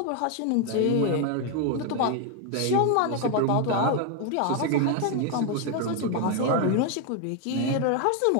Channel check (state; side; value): different; both; correlation 0.01